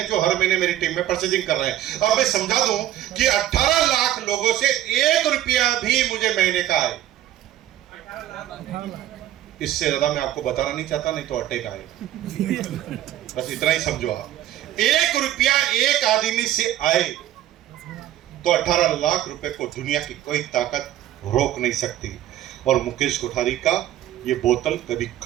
जो हर महीने मेरी टीम में परचेजिंग कर रहे हैं। अब मैं समझा दूं कि 18 लाख लोगों से 1 रुपया भी मुझे महीने का आए, इससे ज्यादा मैं आपको बताना नहीं चाहता, नहीं तो अटैक आएगा। बस इतना ही समझो आप। 1 रुपया एक आदमी से आए तो 18 लाख रुपए को दुनिया की कोई ताकत रोक नहीं सकती। और मुकेश कोठारी का ये बोतल कभी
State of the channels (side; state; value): left; quieter; 12.6 dB